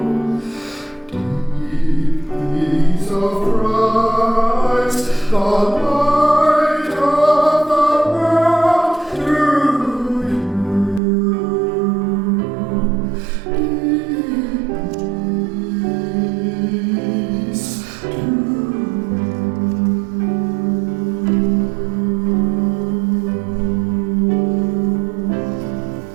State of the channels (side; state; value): left; drops out; at 11.0 s